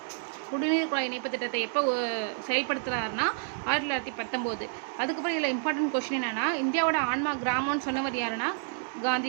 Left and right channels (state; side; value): silent; left; 57 dB below the other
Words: இணைப்பு திட்டத்தை எப்போ செயல்படுத்துகிறாருன்னா 1919. அதுக்கப்புறம் இதில் இம்பார்ட்டன்ட் கொஸ்டின் என்னென்னா, இந்தியாவோட ஆன்மா கிராமம்னு சொன்னவர் யாருன்னா